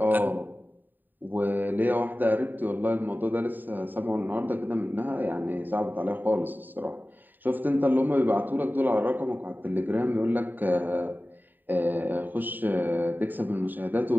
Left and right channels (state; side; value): late; left; 0.090 ms